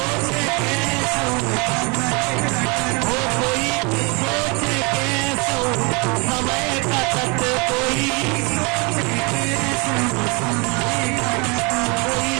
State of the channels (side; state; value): left; quieter; 30.0 dB